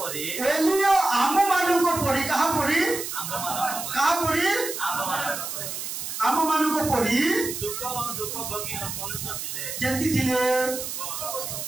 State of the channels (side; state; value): right; noise; hiss, 6 dB below the sound